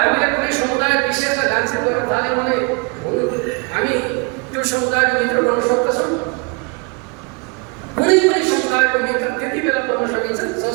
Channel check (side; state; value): left; quieter; 32.9 dB